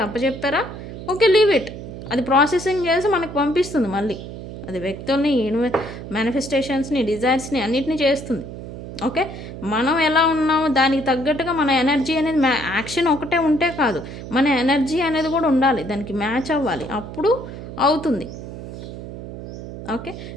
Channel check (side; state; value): right; noise; hum, 10 dB below the sound